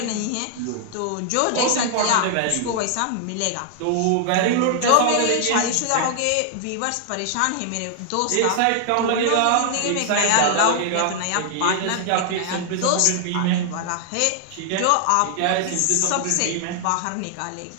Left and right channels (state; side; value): different; both; correlation 0.00